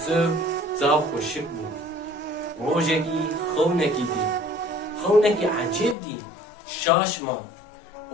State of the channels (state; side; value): drops out; right; at 6.0 s